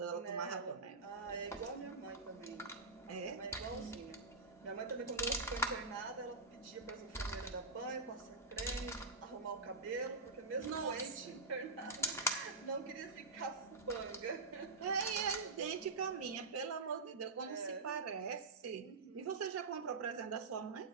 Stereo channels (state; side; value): quieter; left; 3.4 dB